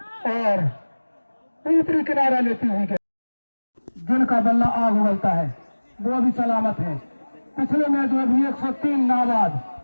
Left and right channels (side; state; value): both; inverted; correlation -1.00